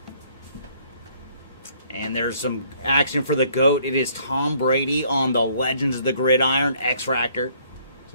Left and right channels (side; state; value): both; inverted; correlation -0.63